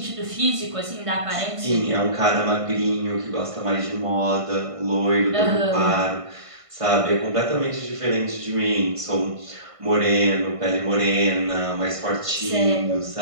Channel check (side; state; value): left; late; 1.5 ms